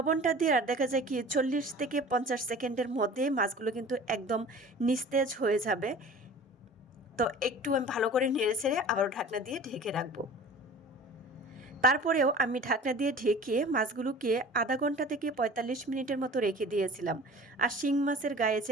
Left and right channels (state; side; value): normal; both; correlation 0.42